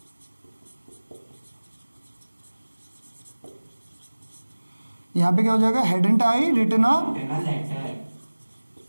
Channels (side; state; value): both; inverted; correlation -1.00